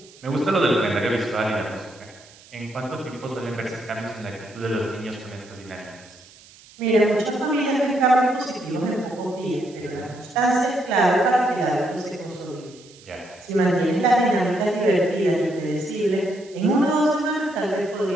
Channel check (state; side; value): noise; right; hiss, 24 dB below the sound